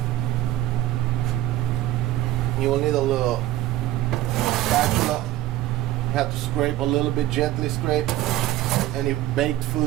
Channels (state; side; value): quieter; left; 15.2 dB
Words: You will need a little spatula. You have to scrape a little bit, gently scrape any baked